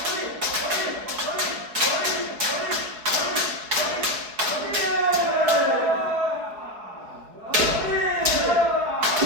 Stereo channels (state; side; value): late; left; 4.7 ms